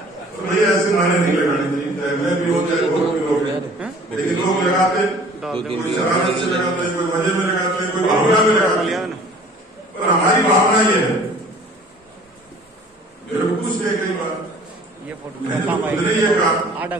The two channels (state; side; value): normal; both; correlation 0.50